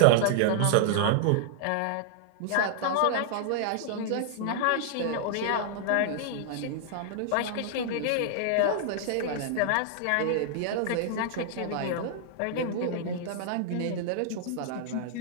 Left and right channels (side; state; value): both; different; correlation -0.01